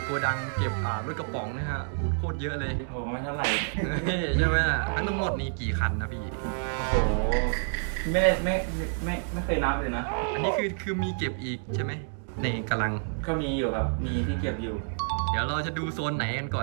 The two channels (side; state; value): left; silent; digital silence